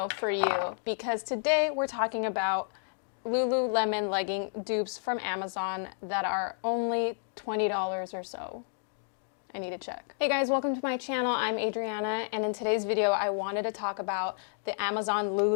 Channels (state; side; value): silent; right; digital silence